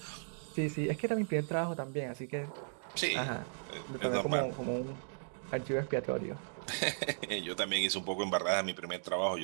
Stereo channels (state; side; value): silent; left; digital silence